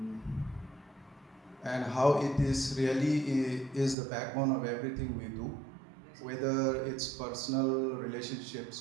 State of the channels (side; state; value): left; drops out; at 4.0 s